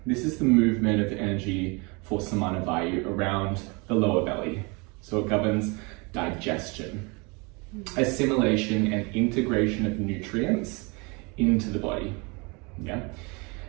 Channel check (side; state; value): left; quieter; 29.1 dB